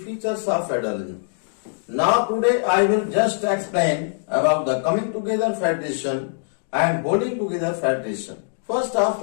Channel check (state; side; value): silent; right; digital silence